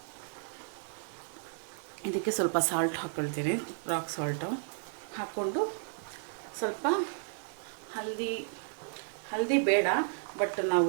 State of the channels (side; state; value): left; silent; digital silence